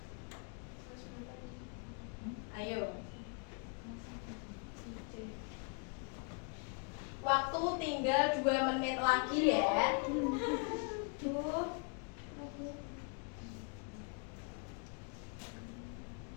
Ayo. Waktu tinggal 2 menit lagi ya.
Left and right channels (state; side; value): quieter; right; 37.5 dB